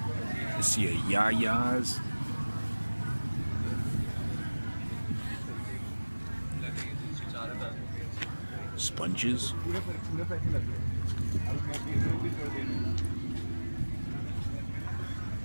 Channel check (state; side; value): inverted; both; correlation -1.00